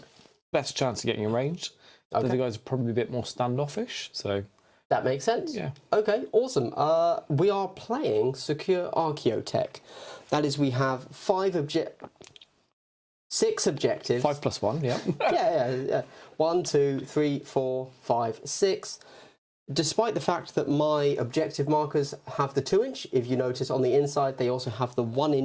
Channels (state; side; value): identical; both; correlation 1.00